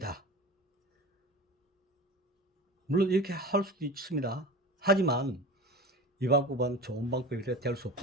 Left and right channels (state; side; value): normal; both; correlation 0.33